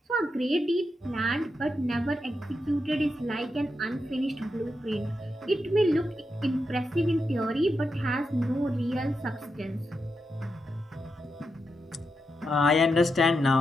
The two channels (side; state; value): both; normal; correlation 0.86